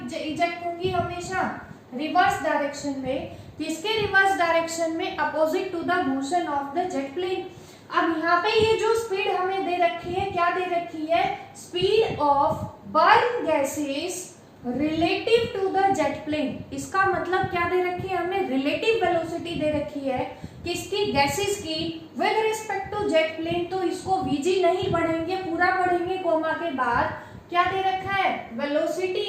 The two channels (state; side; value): identical; both; correlation 1.00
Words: इजेक्ट होंगी? हमेशा रिवर्स डायरेक्शन में। किसके रिवर्स डायरेक्शन में? Opposite to the motion of the jet plane. अब यहाँ पे ये जो स्पीड हमें दे रखी है, क्या दे रखी है? Speed of burn gases relative to the jet plane. इसका मतलब क्या दे रखी है? हमें रिलेटिव वेलोसिटी दे रखी है किसकी? गैसेस की with respect to jet plane. तो इसको वीजी नहीं पढ़ेंगे, पूरा पढ़ेंगे कोमा के बाद। क्या दे रखा है?